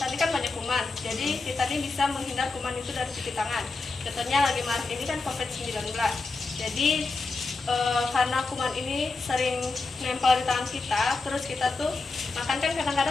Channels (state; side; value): quieter; right; 3.8 dB